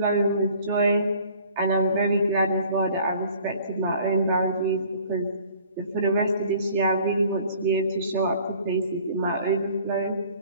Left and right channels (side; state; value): both; inverted; correlation -0.53